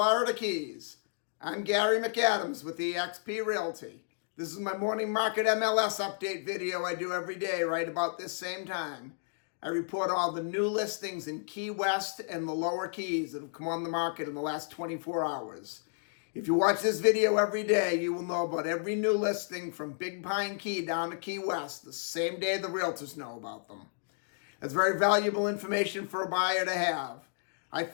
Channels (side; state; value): right; silent; digital silence